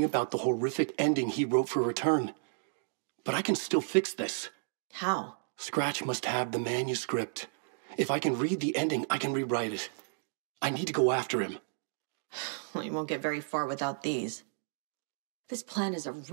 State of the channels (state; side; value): silent; left; digital silence